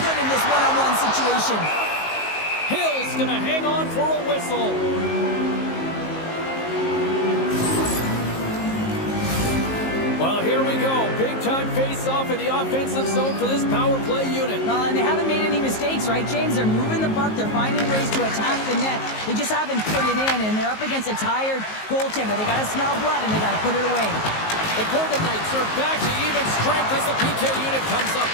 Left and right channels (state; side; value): late; right; 19 ms